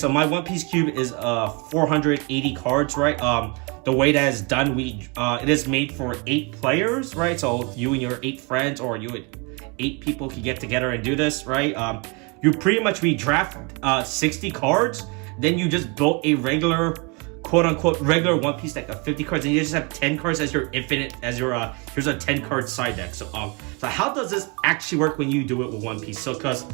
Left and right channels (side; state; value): left; quieter; 30.5 dB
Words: my One Piece cube is 480 cards, right? The way that is done, it is made for 8 players, right? So you and your 8 friends, or you and 8 people can get together and do this, right? We draft 60 cards, then you just build a regular, quote-unquote regular One Piece deck of 50 cards, and you just have 10 cards as your here's a 10-card side deck. So how does this actually work when you do it with One Piece? So because